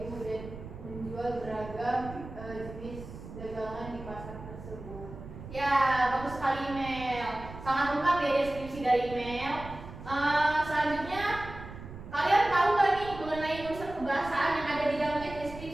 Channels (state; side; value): noise; right; rumble, 13 dB below the sound